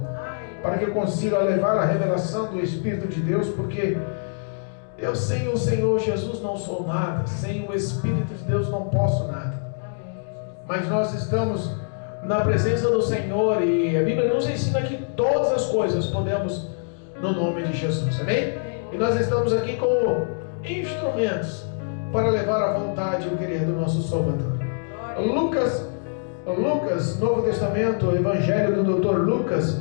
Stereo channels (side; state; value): right; silent; digital silence